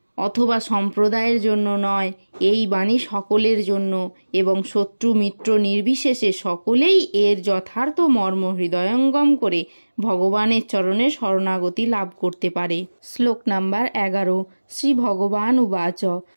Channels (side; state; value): both; inverted; correlation -1.00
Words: অথবা সম্প্রদায়ের জন্য নয়, এই বাণী সকলের জন্য, এবং শত্রু মিত্র নির্বিশেষে সকলেই এর যথার্থ মর্ম হৃদয়ঙ্গম করে ভগবানের চরণে শরণাগতি লাভ করতে পারে। শ্লোক নাম্বার 11। শ্রী ভগবান উবাচ